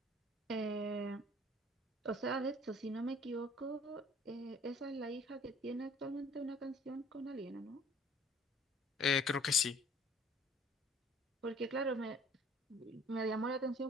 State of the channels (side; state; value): both; normal; correlation 0.55